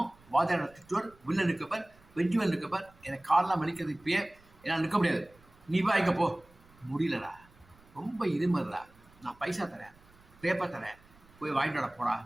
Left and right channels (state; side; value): noise; right; rumble, 27 dB below the sound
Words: வாத்தியார் திட்டுவார். வில்லன் இருக்கப்பர், வெஞ்சுவல் இருக்கப்பர். எனக்கு காலெலாம் வலிக்கிறது. இப்பயே என்னால் நிற்க முடியாது. நீ வாங்கிக்க போ. முடியலடா, ரொம்ப இருமல்டா. நான் பைசா தரேன், பேப்பர் தரேன், போய் வாங்கிட்டு வர போடா